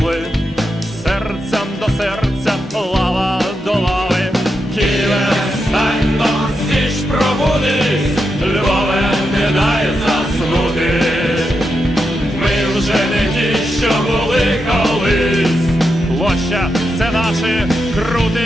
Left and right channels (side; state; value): both; normal; correlation 0.86